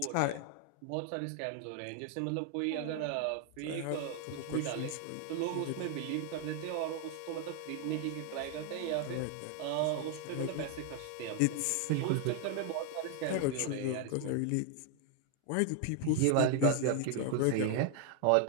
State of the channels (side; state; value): both; different; correlation 0.00